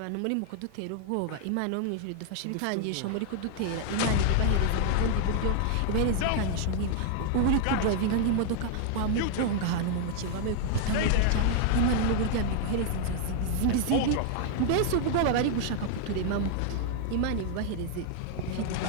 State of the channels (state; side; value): different; both; correlation 0.00